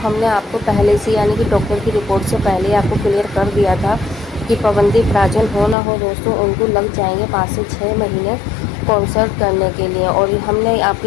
आपको पहले से यानी कि डॉक्टर की रिपोर्ट से पहले आपको क्लियर कर दिया था कि पवनदीप राजन हो ना हो दोस्तों, उनको लग जाएंगे 5 से 6 महीने कॉन्सर्ट करने के लिए। और हमने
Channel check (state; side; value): drops out; right; at 5.8 s